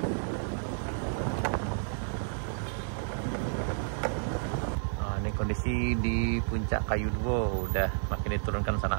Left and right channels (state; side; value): silent; left; digital silence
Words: Nah, ini kondisi di Puncak Kayu Duo udah makin diturunkan sana